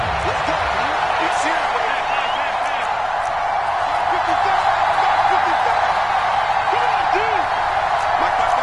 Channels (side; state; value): both; identical; correlation 1.00